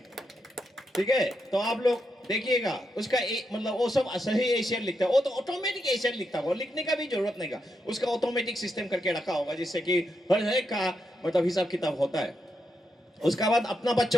ठीक है? तो आप लोग देखिएगा उसका मतलब वो सब सही एशियर लिखता है, वो तो ऑटोमेटिक एशियर लिखता होगा, लिखने का भी जरूरत नहीं का, उसका ऑटोमेटिक सिस्टम करके रखा होगा जिससे कि हर एक का मतलब हिसाब किताब होता है। उसके बाद अपना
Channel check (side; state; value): both; normal; correlation 0.83